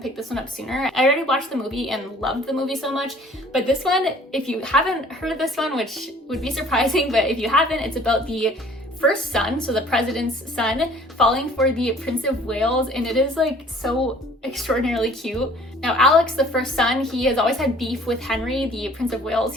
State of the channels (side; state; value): both; normal; correlation 0.53